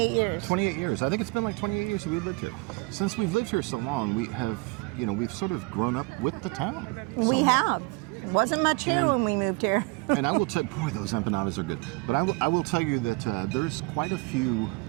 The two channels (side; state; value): left; quieter; 27.8 dB